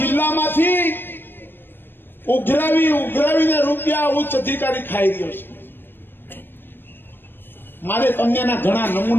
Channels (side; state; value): right; late; 0.097 ms